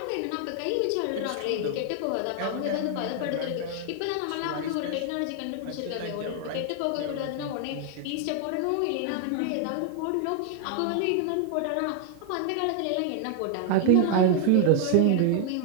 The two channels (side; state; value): both; different; correlation 0.00